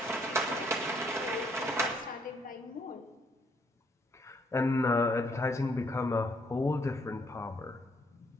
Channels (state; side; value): normal; both; correlation 0.69